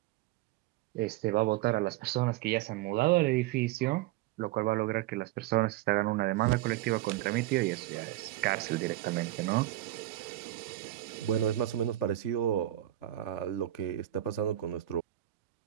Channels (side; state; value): left; quieter; 14.9 dB